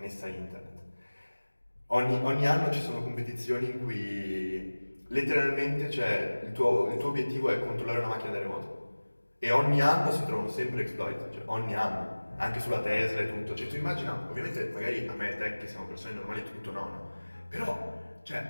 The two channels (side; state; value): both; inverted; correlation -1.00